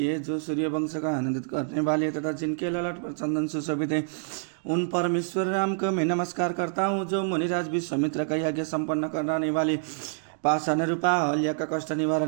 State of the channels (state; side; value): silent; left; digital silence